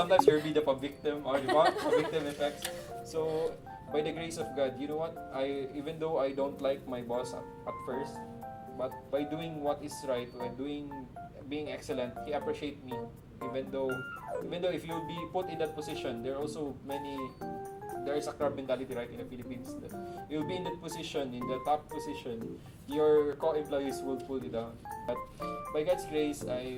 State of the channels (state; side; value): identical; both; correlation 1.00